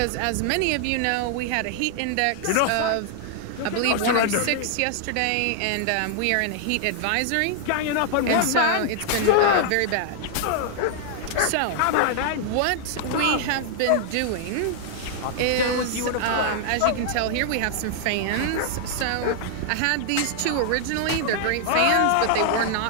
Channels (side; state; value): both; different; correlation 0.00